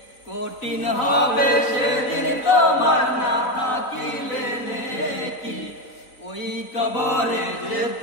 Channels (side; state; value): right; late; 4.0 ms